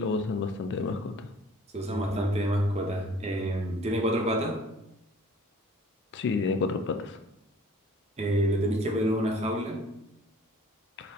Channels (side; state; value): both; normal; correlation 0.52